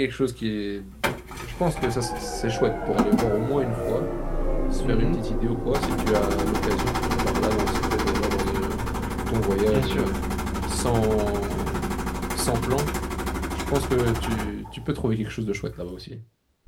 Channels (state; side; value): identical; both; correlation 1.00